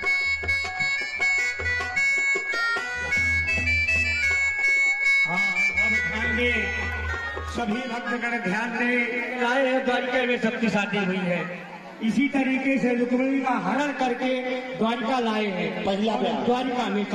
सभी भक्तगण ध्यान दें, राय द्वारिका में सबकी शादी हुई है। इसी तरीके से रुक्मिणी का हरण करके द्वारिका लाए हैं। पहला द्वारिका में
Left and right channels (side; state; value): both; identical; correlation 1.00